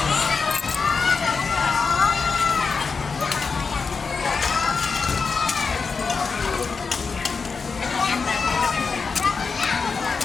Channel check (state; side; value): quieter; right; 5.0 dB